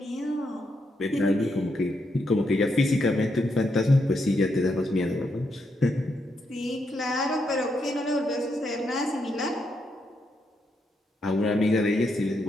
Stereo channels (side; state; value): both; normal; correlation 0.80